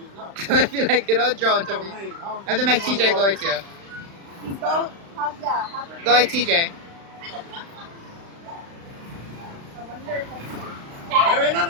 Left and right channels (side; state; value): left; late; 35 ms